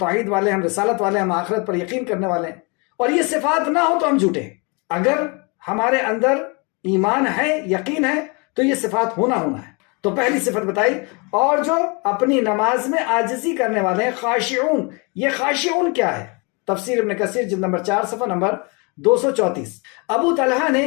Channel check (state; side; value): quieter; right; 31.0 dB